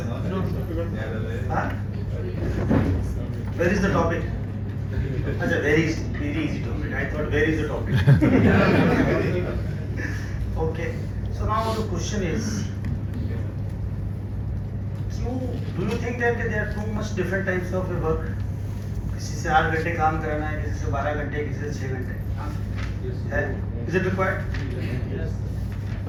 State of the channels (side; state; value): both; identical; correlation 1.00